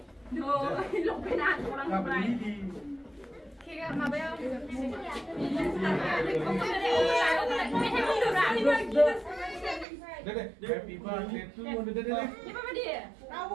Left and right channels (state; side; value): drops out; left; at 9.9 s